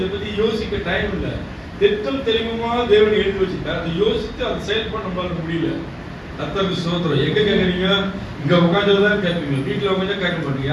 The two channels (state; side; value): identical; both; correlation 1.00